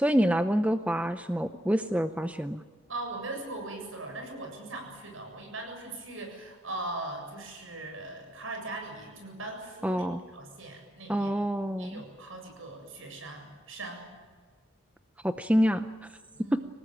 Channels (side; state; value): both; normal; correlation 0.84